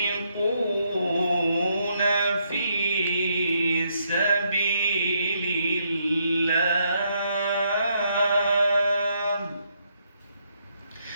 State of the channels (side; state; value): both; inverted; correlation -0.75